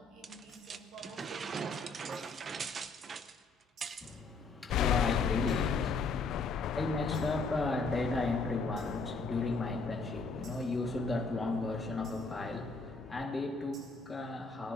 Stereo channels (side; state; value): right; quieter; 3.8 dB